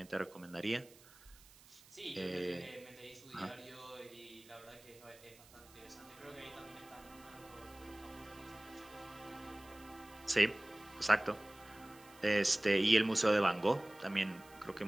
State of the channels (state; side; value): noise; right; hiss, 23 dB below the sound